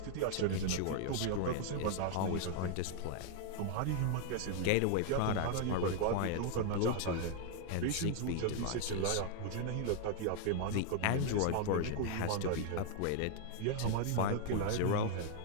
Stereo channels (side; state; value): both; different; correlation 0.00